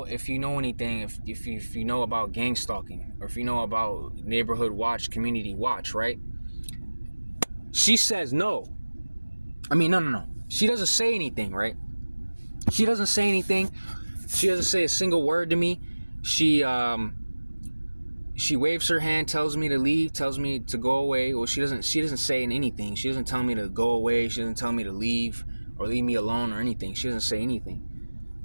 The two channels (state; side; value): inverted; both; correlation -1.00